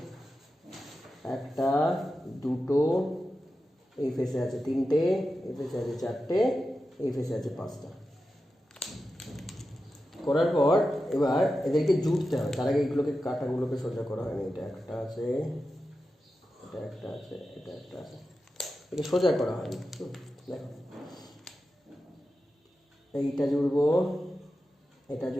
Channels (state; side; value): normal; both; correlation 0.91